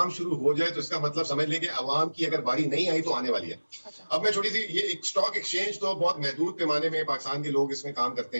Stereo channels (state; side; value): inverted; both; correlation -1.00